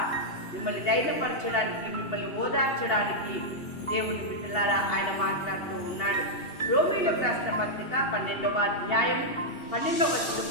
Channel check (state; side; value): late; right; 2.8 ms